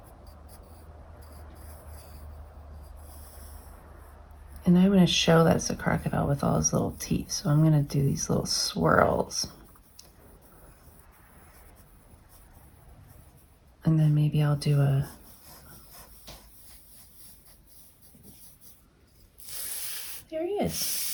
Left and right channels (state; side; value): identical; both; correlation 1.00